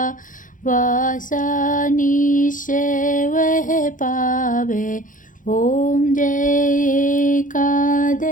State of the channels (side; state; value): right; late; 0.38 ms